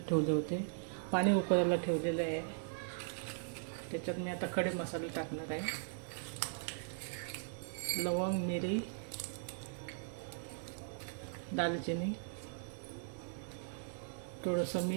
ठेवले होते. पाणी उकळायला ठेवलेलं आहे. त्याच्यात मी आता खडे मसाले टाकणार आहे. लवंग, मिरी, दालचिनी, थोडंसं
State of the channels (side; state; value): left; silent; digital silence